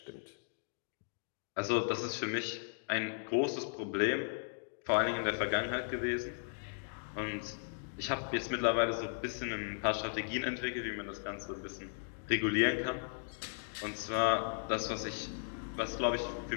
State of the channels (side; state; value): right; silent; digital silence